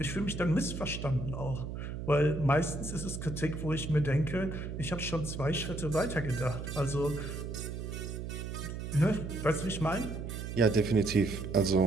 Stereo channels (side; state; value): right; noise; hum, 6 dB below the sound